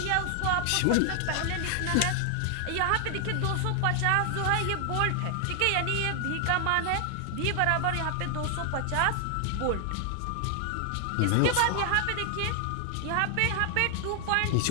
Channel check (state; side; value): different; both; correlation 0.00